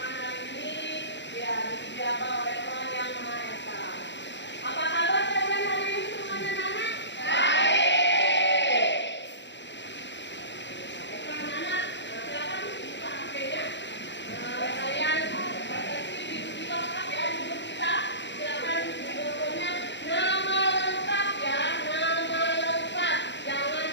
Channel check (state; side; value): late; right; 0.52 ms